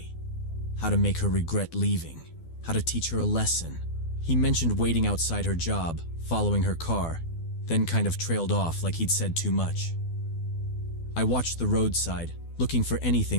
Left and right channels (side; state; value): right; late; 12 ms